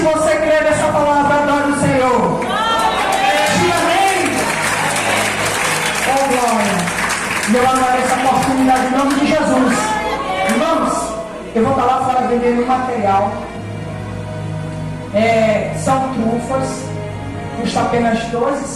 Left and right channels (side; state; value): both; identical; correlation 1.00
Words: E eu agradeço a oportunidade em nome de Jesus. Irmãos, eu vou estar lá fora vendendo material. São trufas. Custa apenas